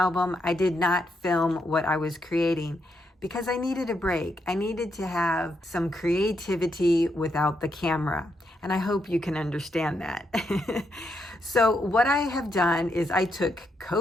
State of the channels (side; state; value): both; normal; correlation 0.79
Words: I did not film what I was creating because I needed a break. I needed to have some creativity without the camera. And I hope you can understand that. So what I have done is I took